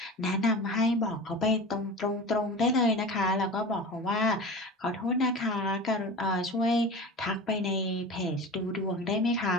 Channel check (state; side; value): normal; both; correlation 0.33